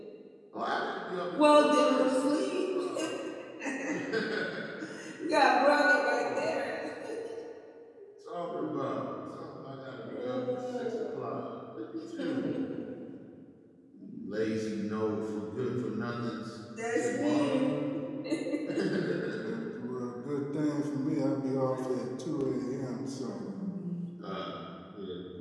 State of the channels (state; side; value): identical; both; correlation 1.00